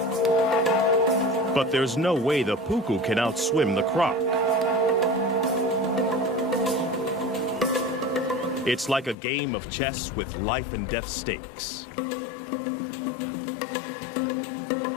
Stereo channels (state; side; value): drops out; right; at 9.2 s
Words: But there's no way the puku can outswim the croc. It's like a game of chess with life and death stakes.